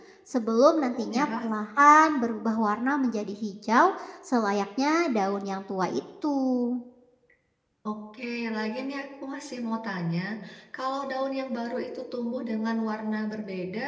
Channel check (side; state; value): both; identical; correlation 1.00